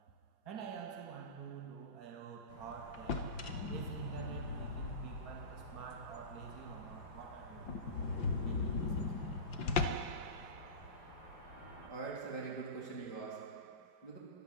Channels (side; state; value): right; late; 5.7 ms